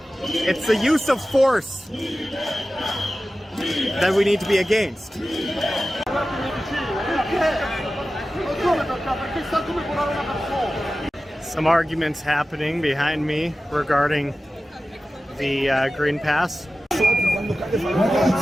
It's the use of force that we need to be against. Some arguments happening behind me regarding the Green Pass.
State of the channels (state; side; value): normal; both; correlation 0.95